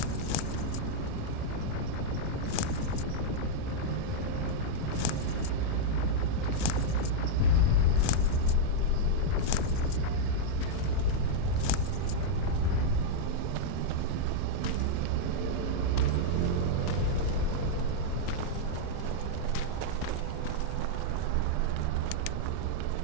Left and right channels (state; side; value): different; both; correlation -0.02